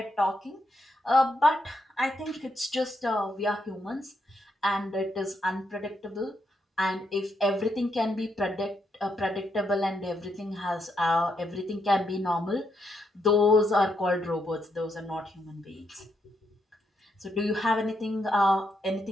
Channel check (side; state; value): both; normal; correlation 0.79